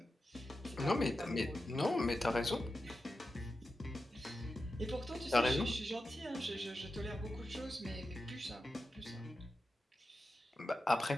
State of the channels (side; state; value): both; normal; correlation 0.91